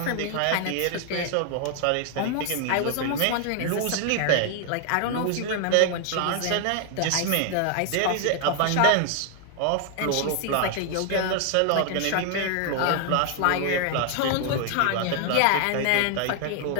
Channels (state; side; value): different; both; correlation 0.00